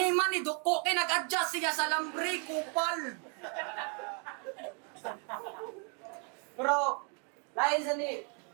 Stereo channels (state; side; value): quieter; left; 38.4 dB